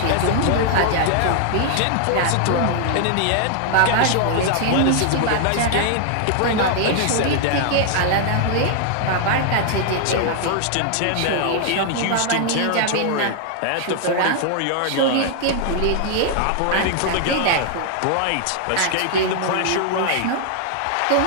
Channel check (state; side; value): different; both; correlation 0.00